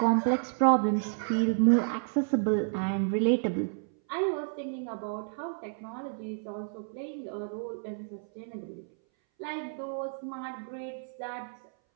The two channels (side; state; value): left; silent; 57 dB below the other